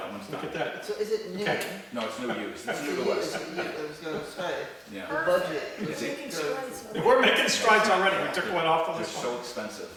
one's Look done. at that. So is it new? Okay. No, it's new use, it's new Is to it us. new? I was going to say, Yeah, the budget. Is it- is good. We're making strides already, we took one off the they're list. so expensive.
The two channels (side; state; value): both; identical; correlation 1.00